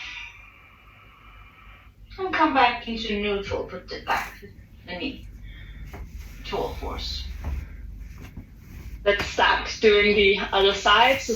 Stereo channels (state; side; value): identical; both; correlation 1.00